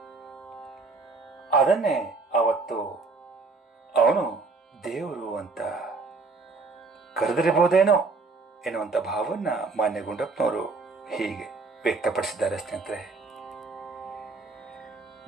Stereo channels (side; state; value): left; quieter; 3.9 dB